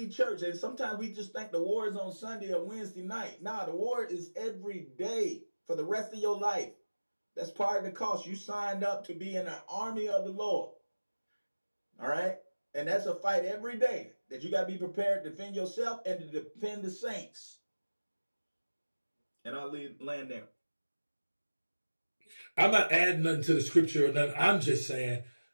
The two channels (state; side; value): inverted; both; correlation -1.00